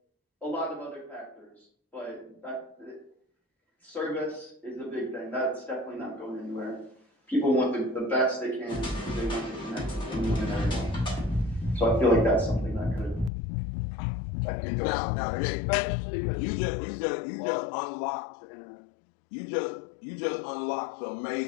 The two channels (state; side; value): drops out; right; at 13.3 s